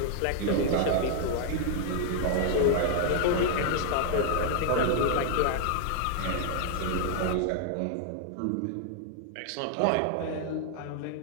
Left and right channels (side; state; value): both; different; correlation 0.00